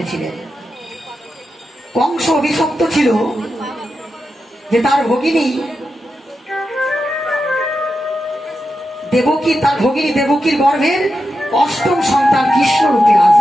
কংস অভিশপ্ত ছিল যে তার ভগিনী দেবকী, তার ভগিনী দেবকীর গর্ভের অষ্টম সন্তান কৃষ্ণ রূপে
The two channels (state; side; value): normal; both; correlation 0.88